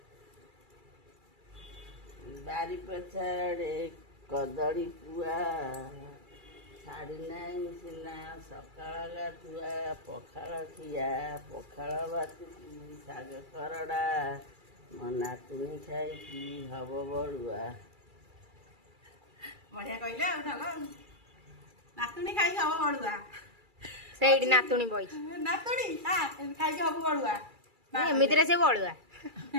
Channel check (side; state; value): left; late; 2.3 ms